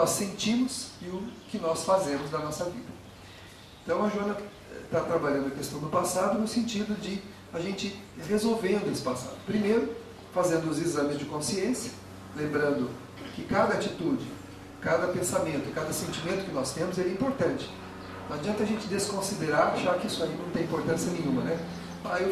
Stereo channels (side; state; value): both; identical; correlation 1.00